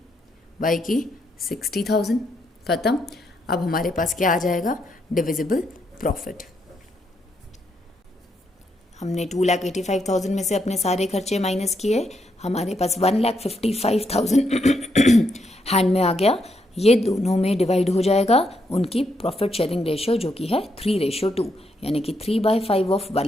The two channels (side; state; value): both; normal; correlation 0.78